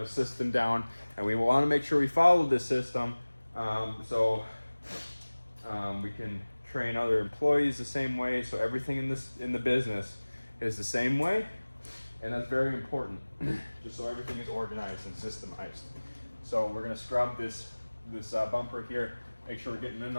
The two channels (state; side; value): inverted; both; correlation -1.00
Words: a system down, and we want to make sure we follow this system so we can train other employees the same way. So everything in the business is the same way, and that's very important, just so everything is organized and systemized. So we're going to scrub this bumper here, make sure we're getting in